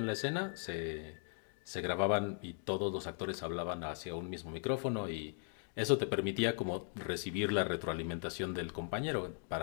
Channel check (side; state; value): right; silent; 52 dB below the other